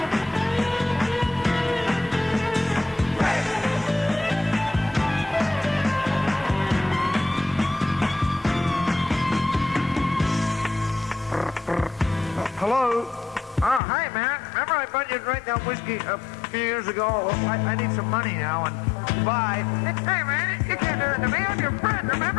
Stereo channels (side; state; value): right; drops out; at 13.8 s